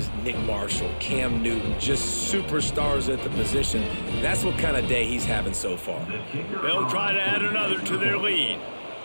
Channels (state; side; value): inverted; both; correlation -1.00